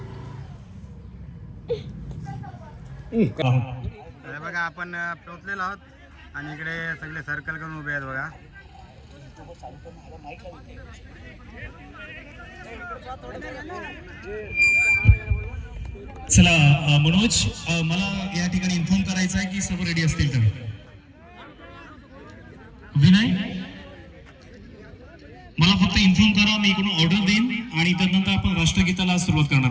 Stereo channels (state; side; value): identical; both; correlation 1.00